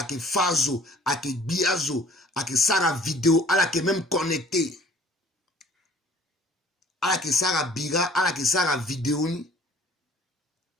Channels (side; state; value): both; normal; correlation 0.53